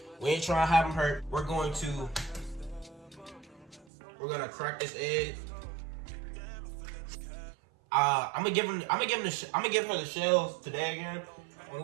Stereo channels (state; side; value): drops out; left; at 3.9 s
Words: We ain't trying to have them hurt. We're gonna crack this egg. I'm gonna give her the shells today again. When